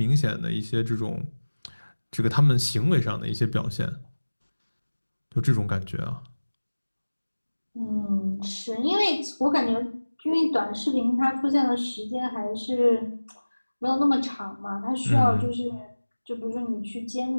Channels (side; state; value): both; inverted; correlation -1.00